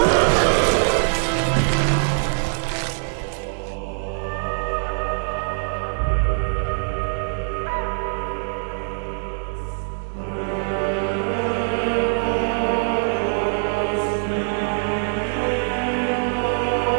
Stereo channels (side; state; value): left; silent; 64 dB below the other